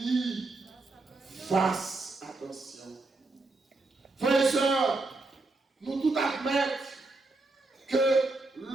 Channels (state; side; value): quieter; left; 3.3 dB